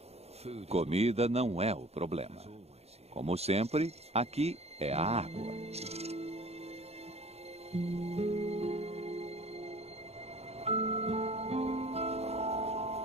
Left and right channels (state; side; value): late; left; 0.30 ms